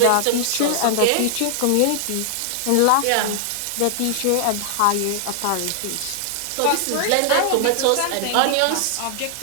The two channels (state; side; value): different; both; correlation -0.01